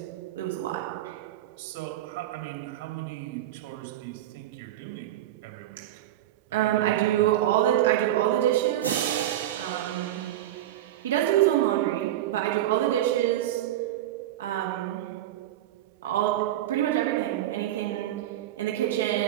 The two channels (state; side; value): quieter; left; 13.1 dB